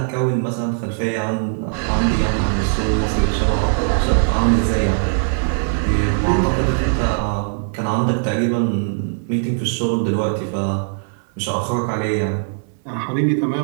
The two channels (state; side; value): silent; left; digital silence